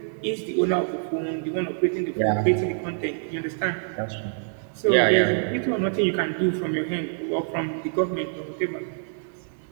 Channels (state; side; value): silent; left; digital silence